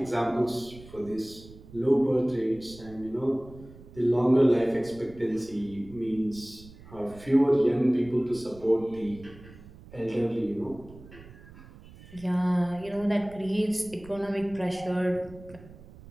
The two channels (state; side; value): noise; right; rumble, 19 dB below the sound